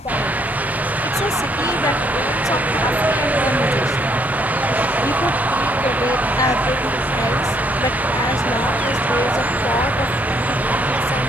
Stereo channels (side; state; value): both; normal; correlation 0.69